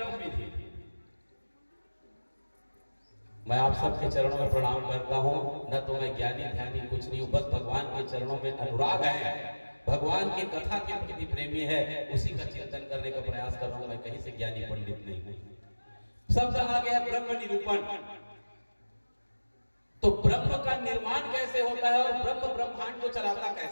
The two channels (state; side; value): inverted; both; correlation -1.00